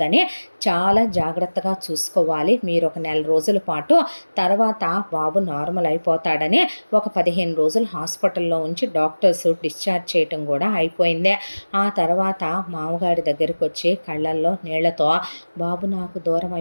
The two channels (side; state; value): both; inverted; correlation -1.00